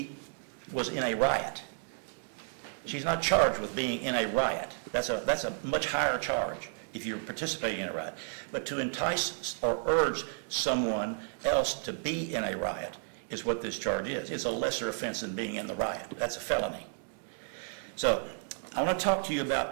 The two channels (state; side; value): silent; left; 56 dB below the other